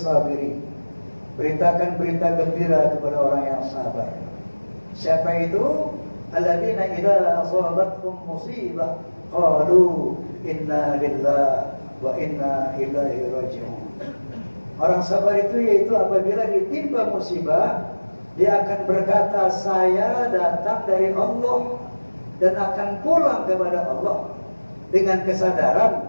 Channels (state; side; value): inverted; both; correlation -1.00